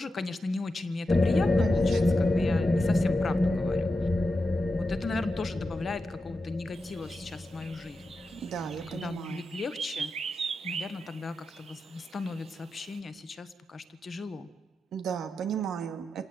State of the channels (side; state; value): both; normal; correlation 0.90